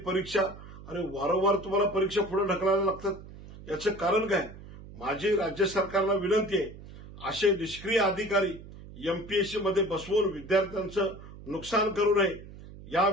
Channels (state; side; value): noise; right; hum, 16 dB below the sound